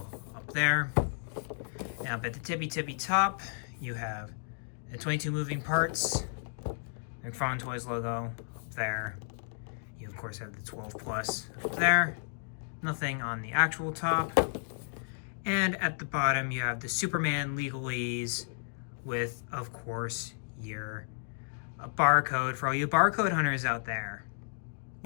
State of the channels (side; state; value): right; silent; digital silence